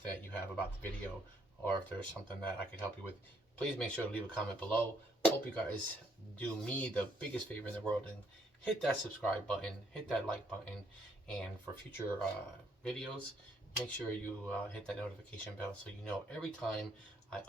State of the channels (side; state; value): both; normal; correlation 0.69